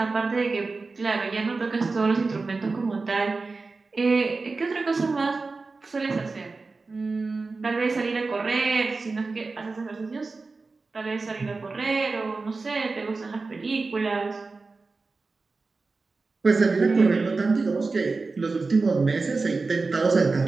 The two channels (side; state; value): left; quieter; 3.9 dB